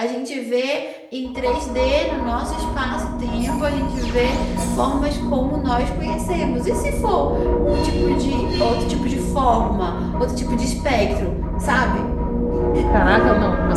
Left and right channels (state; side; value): identical; both; correlation 1.00